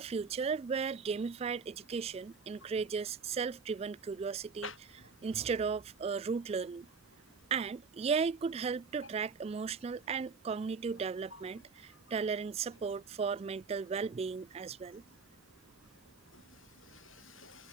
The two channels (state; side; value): quieter; left; 5.2 dB